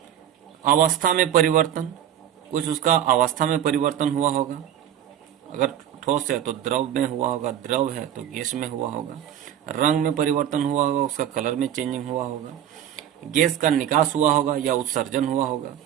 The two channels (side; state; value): left; quieter; 10.6 dB